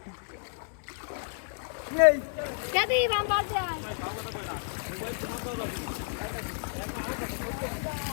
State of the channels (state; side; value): silent; right; 57 dB below the other